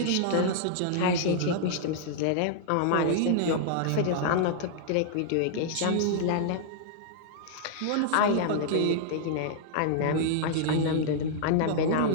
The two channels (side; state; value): both; different; correlation -0.01